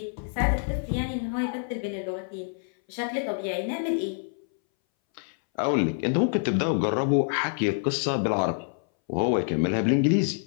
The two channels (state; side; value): silent; right; 60 dB below the other